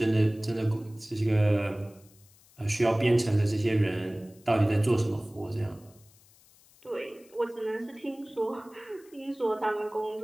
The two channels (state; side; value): noise; left; hiss, 28 dB below the sound